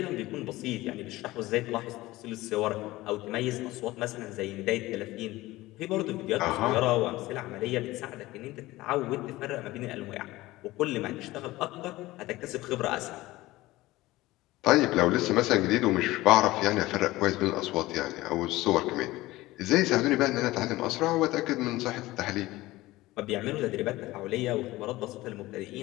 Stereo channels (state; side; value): quieter; right; 18.3 dB